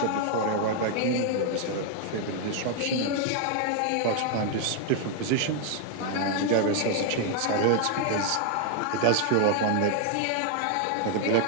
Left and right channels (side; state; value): both; different; correlation 0.00